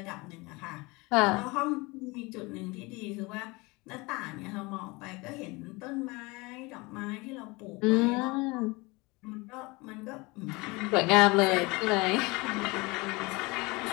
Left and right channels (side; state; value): right; quieter; 24.7 dB